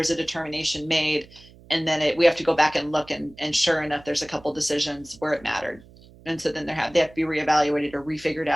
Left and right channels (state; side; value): noise; right; hum, 24 dB below the sound